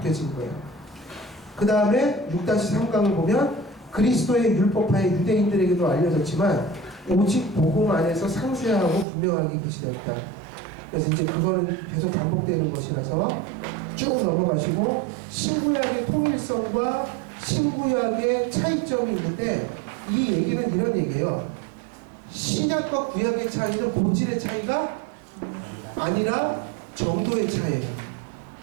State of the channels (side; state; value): left; drops out; at 9.1 s